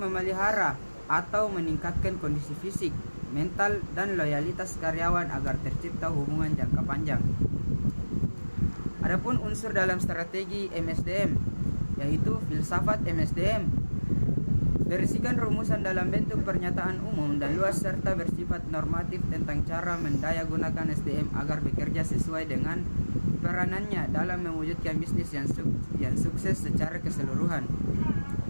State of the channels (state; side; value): inverted; both; correlation -1.00